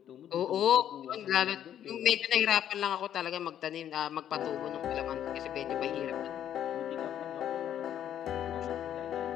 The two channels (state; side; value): quieter; right; 10.4 dB